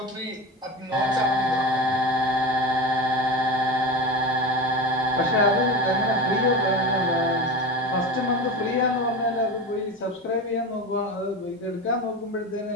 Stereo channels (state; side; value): normal; both; correlation 0.26